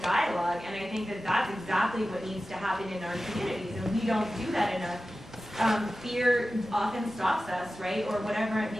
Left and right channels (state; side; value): normal; both; correlation 0.95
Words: dialogue, and I think that that's exactly what needs to happen in our communities, and we don't do that enough. Fear often stops us, right, or whatever it